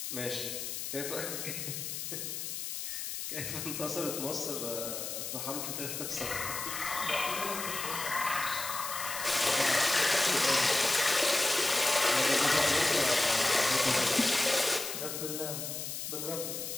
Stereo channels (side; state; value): left; noise; hiss, 5 dB below the sound